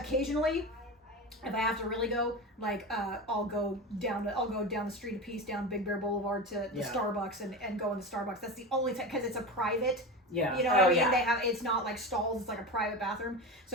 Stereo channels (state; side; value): normal; both; correlation 0.25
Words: If I have to really go, like, I'll go down the street a piece down Big Bear Boulevard to the Yeah. Starbucks and go in the Starbucks. That's the only time because it's a private. Yeah. You know what I mean? yeah. They have it's not like stalls. It's like a private bathroom.